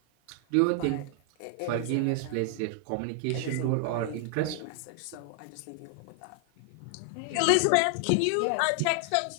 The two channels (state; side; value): different; both; correlation 0.00